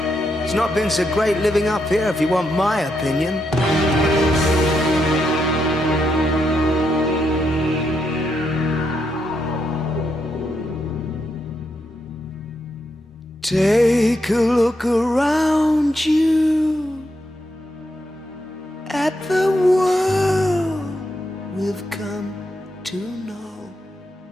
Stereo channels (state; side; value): normal; both; correlation 0.81